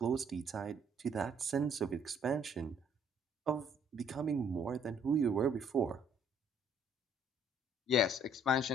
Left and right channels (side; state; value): both; normal; correlation 0.62